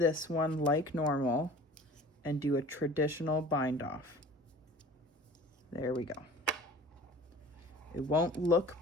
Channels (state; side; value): normal; both; correlation 0.44